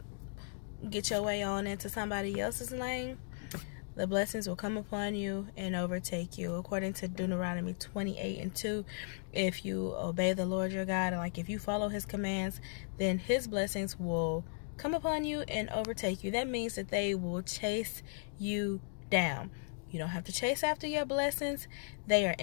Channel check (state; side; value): silent; right; digital silence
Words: get your way on into somebody else's lane, the blessings will come upon you and overtake you. According to Deuteronomy 28:2, if you obey the Lord your God, and if you follow his commands, then his blessings will come upon you and overtake you. That means that they will chase you down. You don't have to chase after your blessings. They are